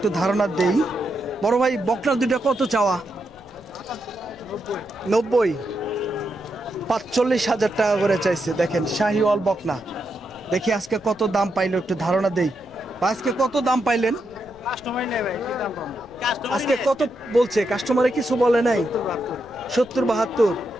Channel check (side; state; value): left; noise; rumble, 25 dB below the sound